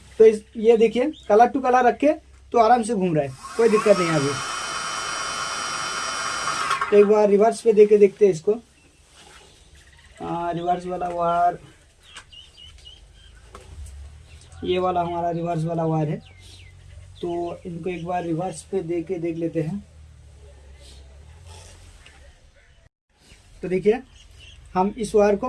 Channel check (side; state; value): both; identical; correlation 1.00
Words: तो ये देखिए कलर टू कलर रखे तो आराम से घूम रहा है, कोई दिक्कत नहीं है अभी। तो एक बार रिवर्स पे देके देखते हैं इसको। रिवर्स वाला वायर, ये वाला हमारा रिवर्स वाला वायर है। तो इनको एक बार रिवर्स पे देके देख लेते हैं। तो देखिए हम इस वायर को